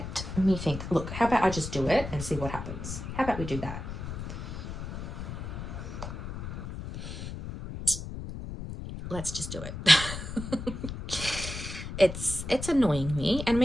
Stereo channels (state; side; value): noise; left; rumble, 7 dB below the sound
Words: Look, how about I just do it and see what happens? How about we do that? Let's just do it. It's annoying me. And I